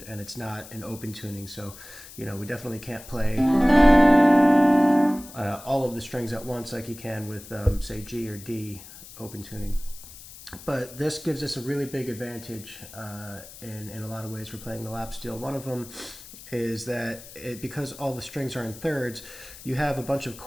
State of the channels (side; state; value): left; noise; hiss, 17 dB below the sound